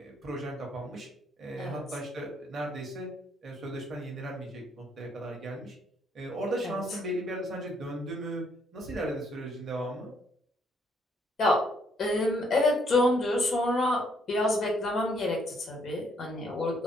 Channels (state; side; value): normal; both; correlation 0.69